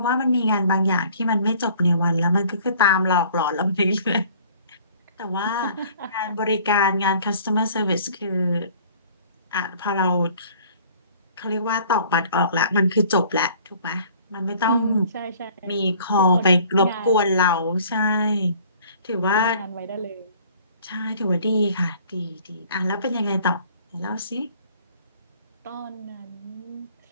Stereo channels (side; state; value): both; inverted; correlation -0.53